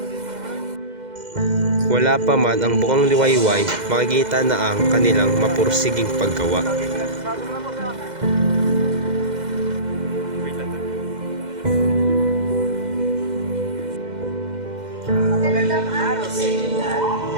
Wala pa man ang bukang liwayway, makikita na ang kanilang mapursiging paggawa. Magandang araw sa inyo lahat.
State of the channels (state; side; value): late; left; 2.1 ms